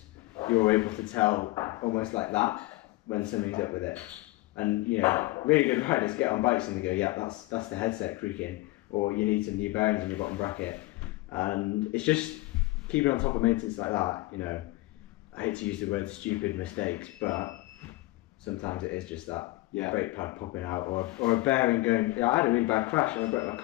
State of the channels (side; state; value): right; quieter; 20.1 dB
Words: you're able to tell almost like that when something's up with it. And really good riders get on bikes and they go, yeah, that's the headset creaking, or you need some new bearings in your bottom bracket. And it's just keeping on top of maintenance like that. I hate to use the word stupid mistakes, but sometimes it is just that. brake pad popping out, or a bearing going. I had a really bad crash and I broke my